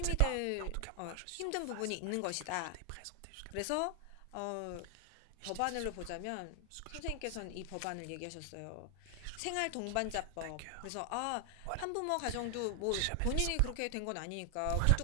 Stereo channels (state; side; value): different; both; correlation 0.00